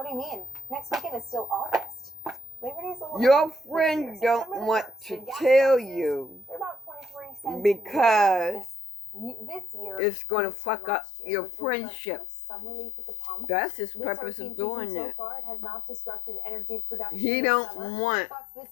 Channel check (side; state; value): right; drops out; at 10.0 s